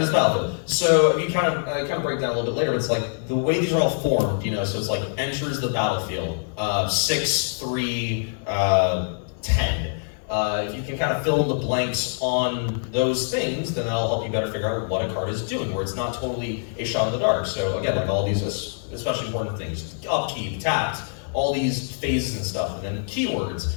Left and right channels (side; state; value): right; silent; digital silence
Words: the battlefield. So if you kind of break down a little bit later, it's like the way these are all formed, so it's like enters the battlefield, 6, 3, 10. If you can kind of fill in the blanks on those things, then that'll help you better figure out what a card is doing, where it's not totally a shot in the dark. So again, like all these especially important things, upkeep, tapped, all these phases and stuff, and then keywords,